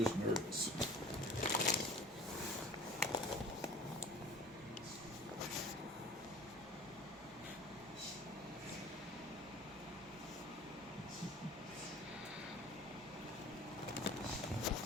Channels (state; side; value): normal; both; correlation 0.44